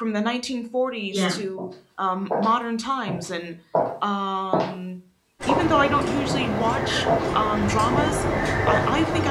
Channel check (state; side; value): identical; both; correlation 1.00